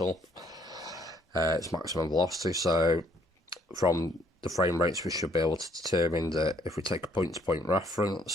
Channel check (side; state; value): both; normal; correlation 0.65